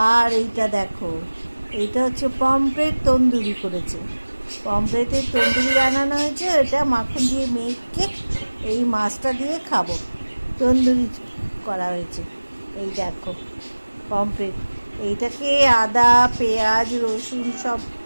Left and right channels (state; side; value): inverted; both; correlation -1.00